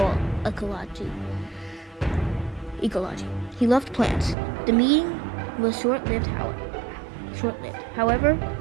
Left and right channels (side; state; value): left; drops out; at 4.4 s